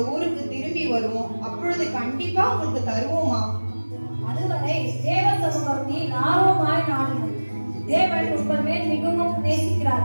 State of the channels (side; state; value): both; inverted; correlation -1.00